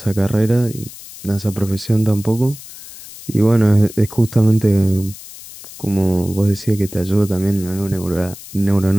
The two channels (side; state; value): left; noise; hiss, 16 dB below the sound